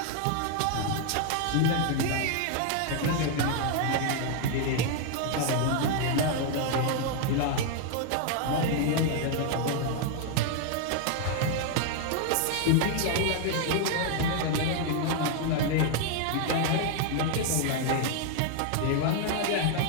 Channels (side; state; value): both; different; correlation 0.00